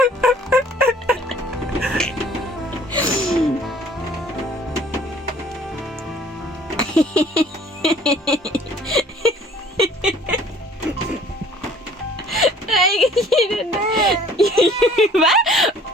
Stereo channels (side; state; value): both; normal; correlation 0.54